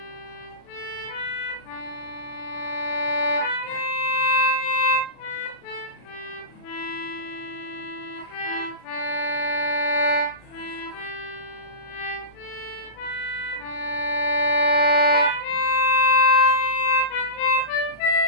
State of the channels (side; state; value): right; late; 37 ms